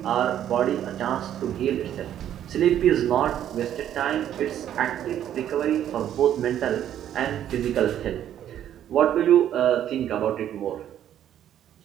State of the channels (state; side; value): quieter; left; 10.8 dB